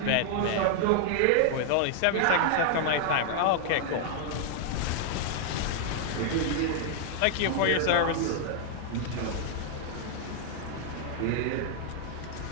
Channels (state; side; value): different; both; correlation 0.00